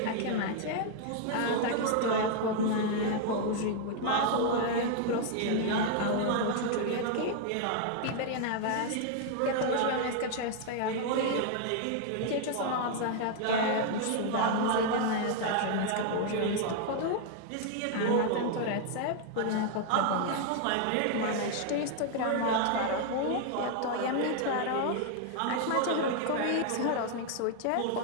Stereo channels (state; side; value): different; both; correlation 0.00